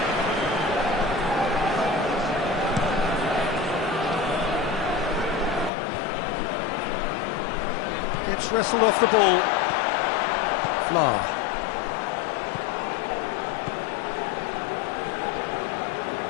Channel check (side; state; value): right; drops out; at 5.7 s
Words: Gets wrestled off the ball. Fla.